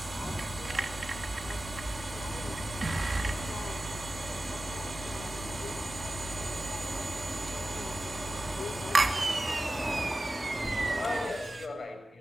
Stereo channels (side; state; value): both; normal; correlation 0.94